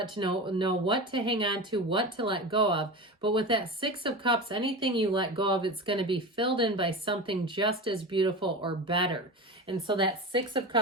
what to hang on to, what to let go of. But with that Six of Cups, anything you let go of, it's going to be filled in by something just as beautiful or better. And so that Six of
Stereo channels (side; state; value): both; normal; correlation 0.26